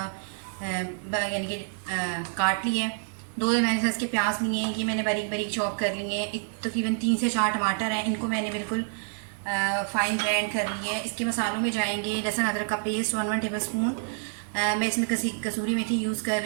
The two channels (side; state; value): left; silent; 60 dB below the other